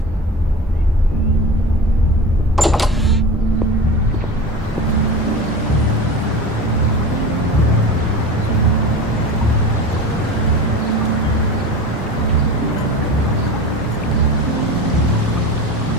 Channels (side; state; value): both; normal; correlation 0.32